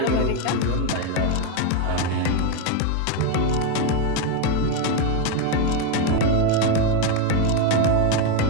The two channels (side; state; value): both; different; correlation 0.02